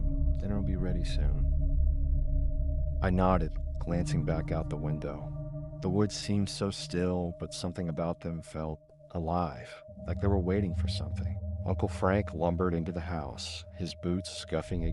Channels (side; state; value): both; identical; correlation 1.00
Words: Dinner will be ready soon." I nodded, glancing back out the window. The woods seemed so still, but something about them felt alive, like they were waiting for something. Uncle Frank lumbered into the house, his boots scuffing